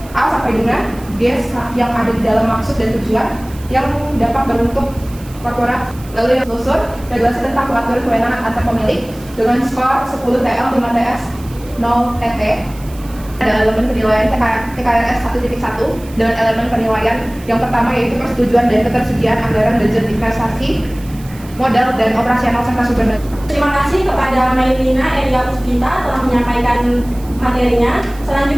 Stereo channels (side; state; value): right; noise; hiss, 21 dB below the sound